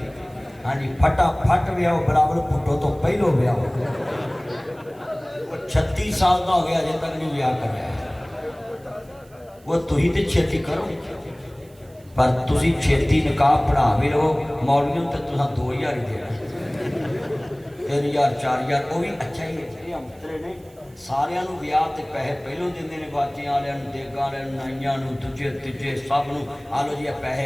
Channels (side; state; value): right; noise; hiss, 29 dB below the sound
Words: हाँ जी फटाफट ब्याह बराबर पुटो तो पहलो ब्याह 36 साल का हो गया अजे तक नहीं ब्याह कर रहा वो तुही तो छेती करो पर तुसी छेती निकाह पढ़ा भी रहो मौलवियों तो तुसा 2000 ही देना 3000 4000 वो भी अच्छा ही है। अंतरे ने सारियां नू ब्याह ते पैसे पहलों देंदे ने बाजियां वालियां नू देगां वालियां नू नाइयां नू दूजे तीजे सब नू आ लो जी पैसे